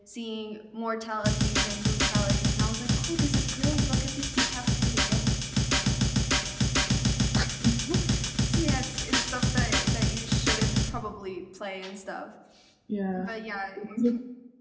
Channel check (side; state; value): both; identical; correlation 1.00